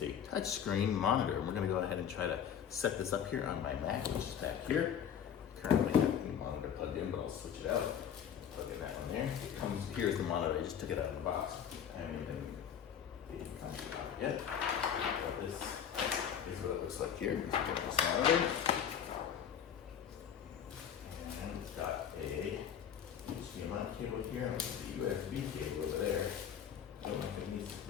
a touchscreen monitor. And we're gonna go ahead and try to set this up here on my Mac, which is back here. Currently have the monitor plugged in, but I'll switch it out. Plug in that one there. It comes, here's the monitor. I just took it out of the box. I haven't even come to it out yet. But this is what it looks like here. Let's get this monitor. And it's got a HDMI cable here, and the USB cable over there. I don't know if it needs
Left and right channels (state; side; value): quieter; right; 8.6 dB